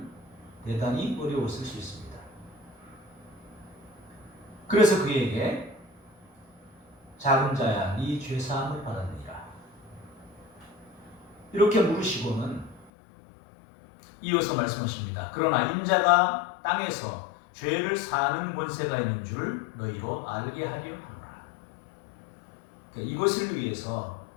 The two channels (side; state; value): right; drops out; at 12.9 s